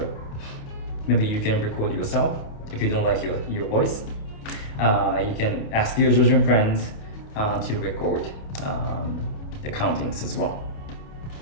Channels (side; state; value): right; late; 28 ms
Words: Maybe you can record yourself if you don't like your voice. You can ask your Georgian friends to record the countings as well.